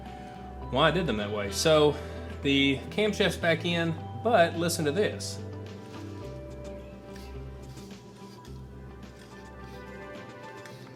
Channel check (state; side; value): identical; both; correlation 1.00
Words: I did them that way. So The camshaft's back in, but listen to this.